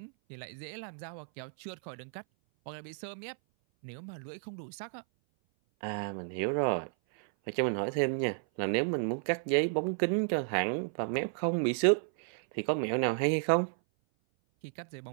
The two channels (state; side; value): silent; left; 56 dB below the other